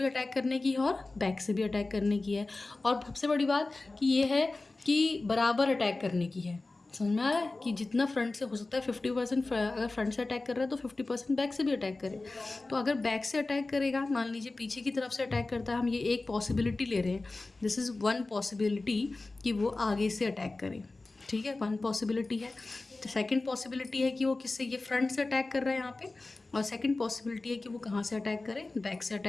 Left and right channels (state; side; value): quieter; right; 3.3 dB